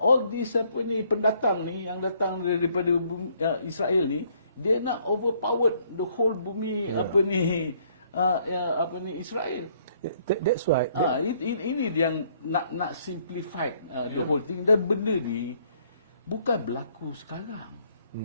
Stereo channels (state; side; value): inverted; both; correlation -0.66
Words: this pendatang ni yang datang daripada Israel ni, dia nak overpower the whole bumi Israel. That's why ini yang nak simplify the whole thing. Dan benda ni bukan berlaku sekarang.